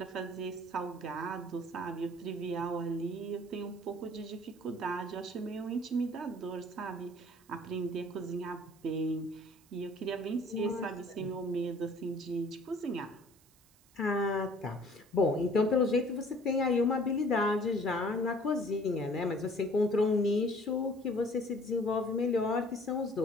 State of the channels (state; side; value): noise; right; hiss, 29 dB below the sound